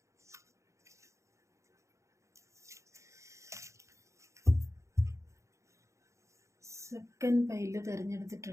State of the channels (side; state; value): left; late; 0.14 ms